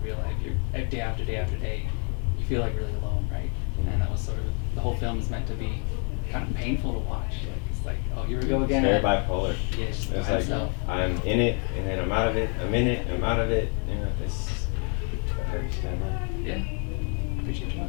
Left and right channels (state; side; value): quieter; right; 38.4 dB